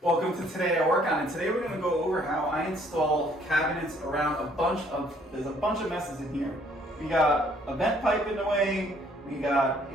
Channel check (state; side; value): normal; both; correlation 0.63